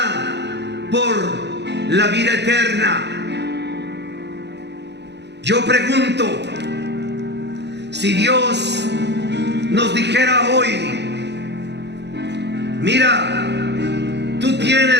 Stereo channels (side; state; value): left; late; 0.50 ms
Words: por la vida eterna. Yo pregunto, si Dios nos dijera hoy: mira, tú